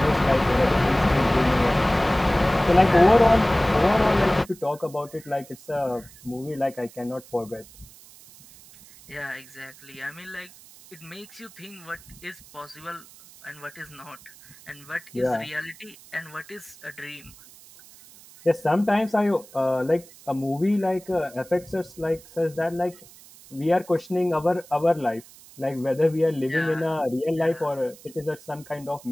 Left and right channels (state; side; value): noise; right; hiss, 22 dB below the sound